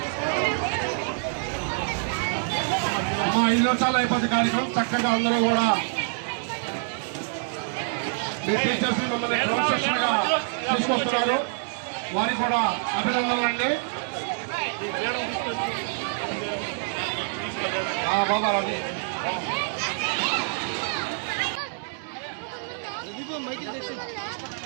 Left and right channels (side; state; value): left; silent; digital silence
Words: 5 నిమిషాలు అయిపోతుంది కార్యక్రమం. చక్కగా అందరూ కూడా మీ టీచర్స్ మిమ్మల్ని క్రమశిక్షణగా తీసుకొస్తున్నారు. వారికి కూడా అభినందనలండి. బాబా రవి